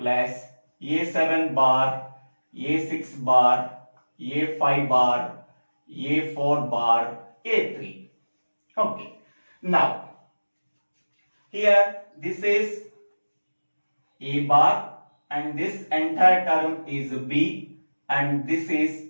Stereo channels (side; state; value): both; inverted; correlation -1.00